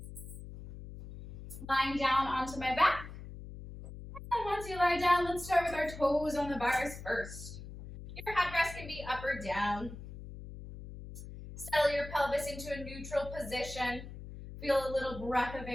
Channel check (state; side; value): noise; left; hum, 12 dB below the sound